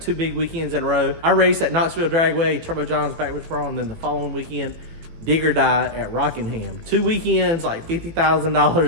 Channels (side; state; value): left; late; 18 ms